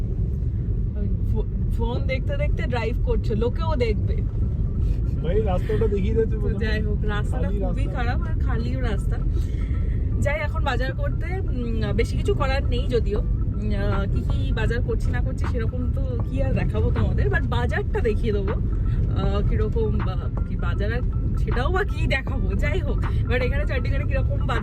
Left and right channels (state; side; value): identical; both; correlation 1.00